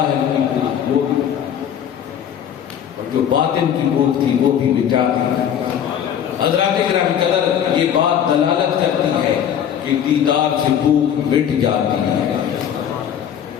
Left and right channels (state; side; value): quieter; right; 9.2 dB